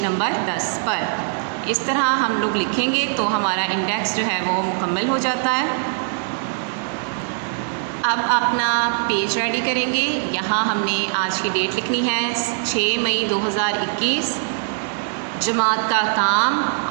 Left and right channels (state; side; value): silent; left; digital silence